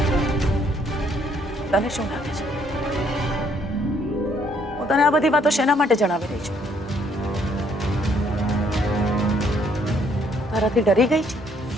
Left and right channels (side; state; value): both; normal; correlation 0.67